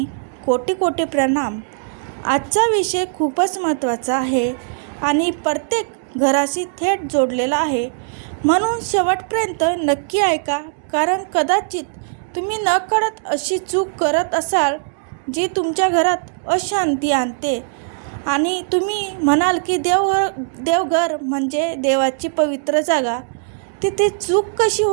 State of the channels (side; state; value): left; silent; 66 dB below the other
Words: कोटी कोटी प्रणाम. आजचा विषय खूपच महत्त्वाचा आहे आणि प्रत्येक घराशी थेट जोडलेला आहे, म्हणून शेवटपर्यंत नक्की ऐका. कारण कदाचित तुम्ही नकळत अशी चूक करत असाल जी तुमच्या घरात अशांती आणते. आणि तुम्ही म्हणाल की देवघर म्हणजे देवाची पवित्र जागा, तिथे चूक कशी